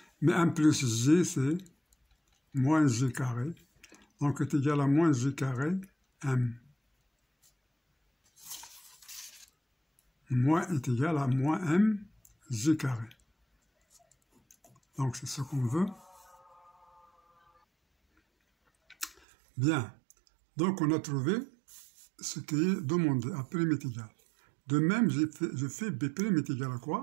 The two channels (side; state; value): left; drops out; at 19.2 s